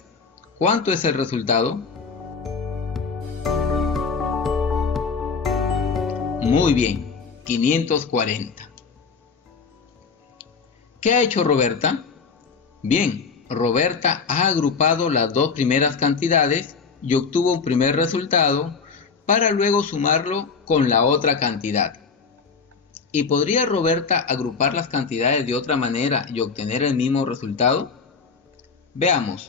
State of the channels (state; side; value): quieter; right; 5.2 dB